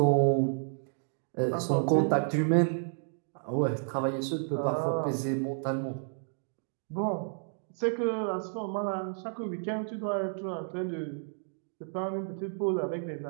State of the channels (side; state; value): left; silent; digital silence